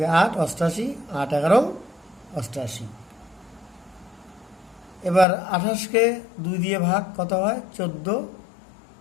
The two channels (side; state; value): right; drops out; at 5.2 s